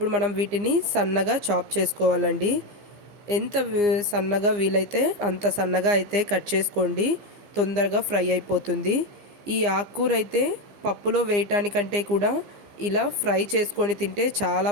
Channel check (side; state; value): left; late; 15 ms